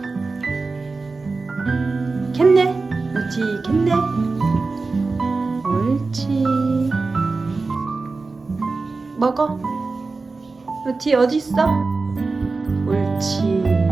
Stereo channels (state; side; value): quieter; left; 3.9 dB